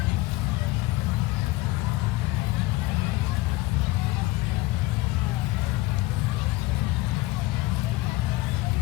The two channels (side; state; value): right; quieter; 18.9 dB